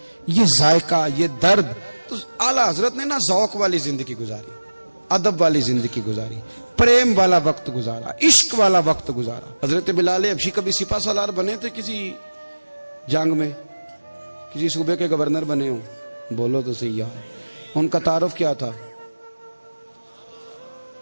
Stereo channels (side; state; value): both; inverted; correlation -1.00